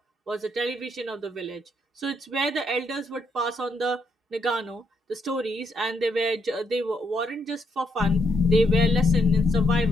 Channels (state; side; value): normal; both; correlation 0.76